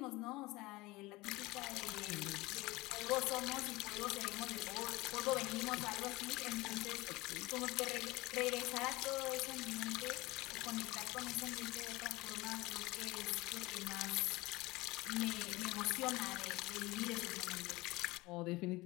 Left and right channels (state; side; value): quieter; right; 21.2 dB